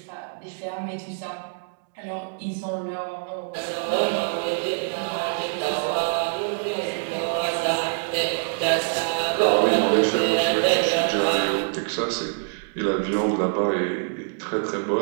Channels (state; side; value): silent; left; digital silence